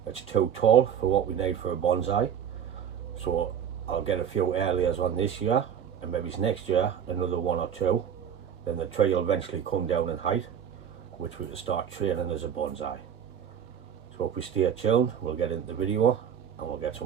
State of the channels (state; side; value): quieter; left; 8.5 dB